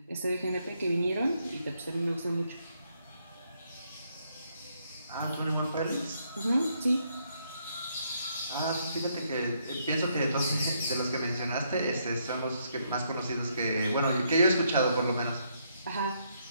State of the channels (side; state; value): both; inverted; correlation -0.74